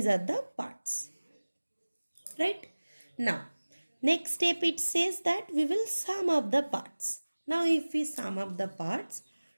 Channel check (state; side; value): inverted; both; correlation -1.00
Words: are the parts. Right? Now, next step it says that we will sum up the parts. Now if we sum up the parts,